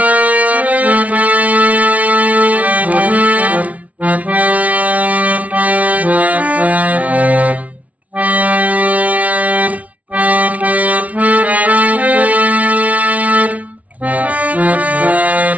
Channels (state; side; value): late; left; 0.068 ms